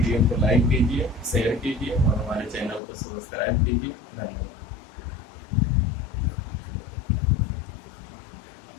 को लाइक कीजिए, शेयर कीजिए और हमारे चैनल को सब्सक्राइब कीजिए। धन्यवाद।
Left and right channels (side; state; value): right; drops out; at 2.8 s